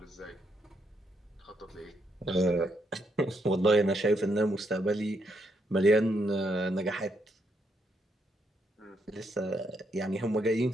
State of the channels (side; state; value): both; normal; correlation 0.77